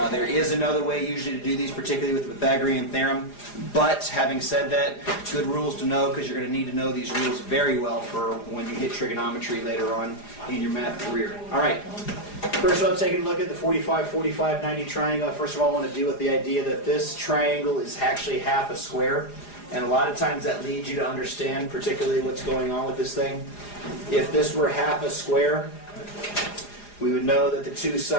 There is another way usually to do these, particularly with the Pythagorean Theorem. But having said that, good rules to know because you're going to need to know these rules very well for when you hit trigonometry later on in your math career. Alright, first of all, taking a look at the 45, 45, 90 triangle. First of all, I want to deal with the idea that this triangle is actually half a square. And a lot of times that leads you to understand particularly what's going on with this thing. If this were half a square, we would know that the two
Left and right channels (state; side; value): late; right; 4.9 ms